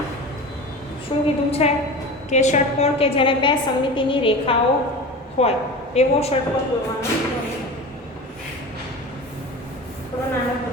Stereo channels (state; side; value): normal; both; correlation 0.32